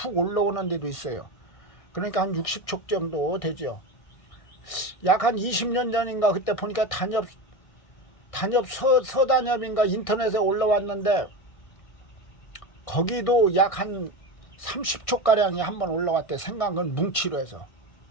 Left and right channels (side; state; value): right; late; 1.6 ms